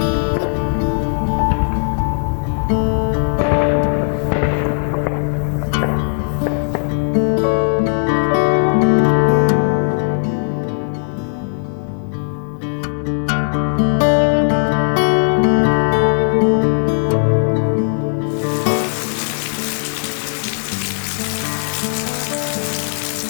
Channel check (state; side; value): silent; right; digital silence